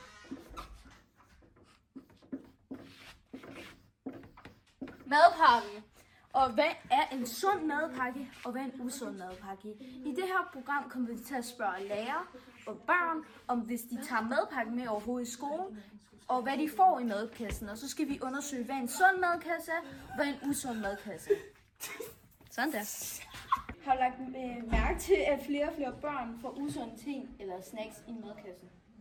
madpakke. Og hvad er en sund madpakke, og hvad er en usund madpakke? I det her program kommer vi til at spørge lærere og børn, om hvis de tager madpakken med overhovedet i skolen, og hvad de får i madkassen. Og så skal vi undersøge, hvad en sund madkasse er, og hvad en usund madkasse er. Sådan der. Har du lagt mærke til, at flere og flere børn får usunde ting eller snacks i madkassen?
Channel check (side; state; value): both; identical; correlation 1.00